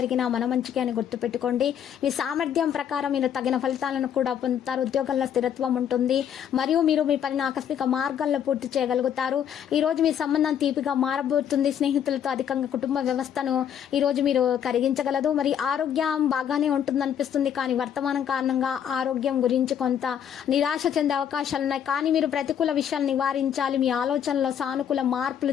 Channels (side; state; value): right; quieter; 9.0 dB